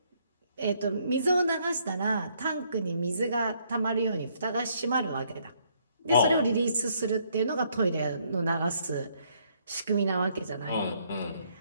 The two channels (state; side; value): inverted; both; correlation -0.69